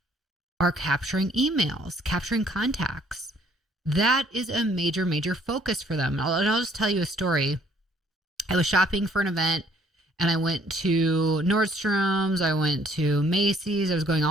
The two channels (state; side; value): normal; both; correlation 0.62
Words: are capturing emails, capturing contacts. That is a major, major focus for them. I'll just tell you a story. I was shopping for an event and I went to Nordstrom's, I went to Macy's, I was going